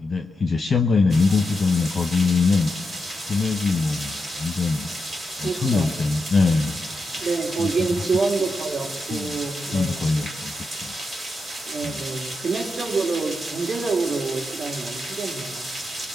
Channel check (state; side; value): normal; both; correlation 0.86